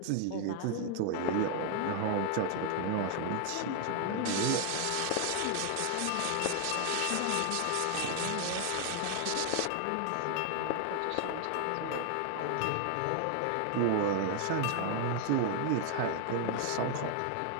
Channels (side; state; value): both; different; correlation 0.00